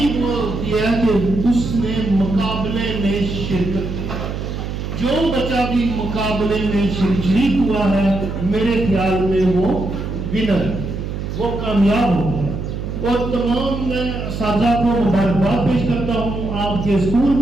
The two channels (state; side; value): noise; right; hum, 5 dB below the sound